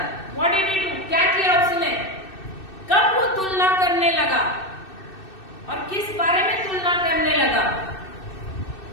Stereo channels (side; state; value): right; late; 2.6 ms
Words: what did he do? क्या किया उसने? कब वो तुलना करने लगा और किस बारे में तुलना करने लगा?